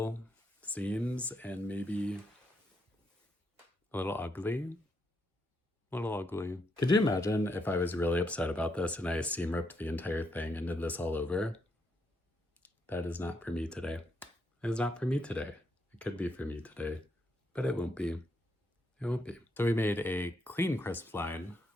seams and maybe a little ugly. A little ugly. Could you imagine if I was really upset about this and I seam ripped the entire thing and did this all over? That is not for me today. It is not for me today. It could be for me today, but it won't be. It won't be. So we made a clean crisp line.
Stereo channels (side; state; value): both; normal; correlation 0.78